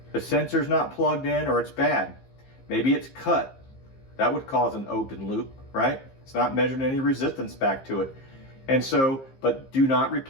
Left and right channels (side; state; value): right; late; 15 ms